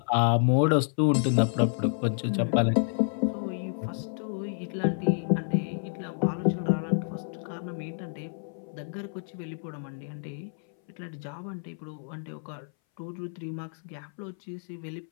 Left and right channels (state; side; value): silent; right; 58 dB below the other